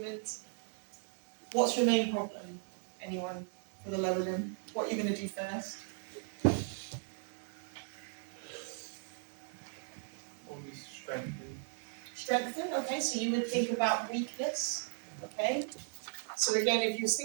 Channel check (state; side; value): silent; left; 53 dB below the other